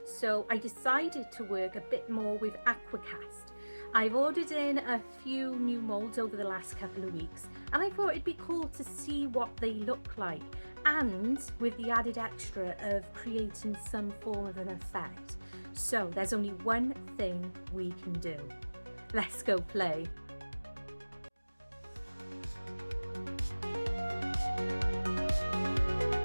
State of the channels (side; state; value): both; inverted; correlation -1.00